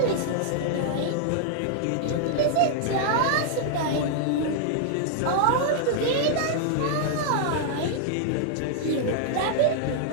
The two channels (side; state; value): both; different; correlation -0.01